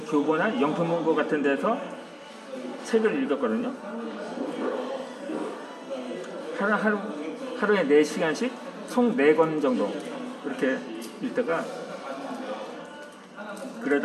영통문고 같은 데서 책을 읽었거든요. 하루에 4시간씩 총 4권 정도 그렇게 읽다가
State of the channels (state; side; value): identical; both; correlation 1.00